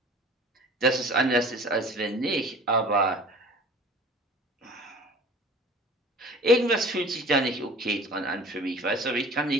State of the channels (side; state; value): both; normal; correlation 0.44